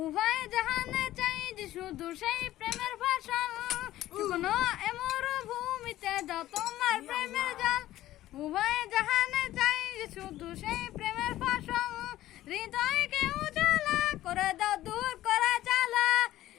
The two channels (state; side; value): quieter; right; 14.6 dB